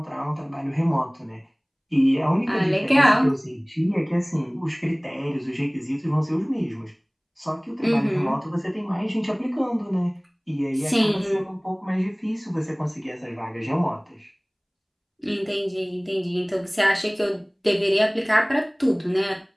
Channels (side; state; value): both; identical; correlation 1.00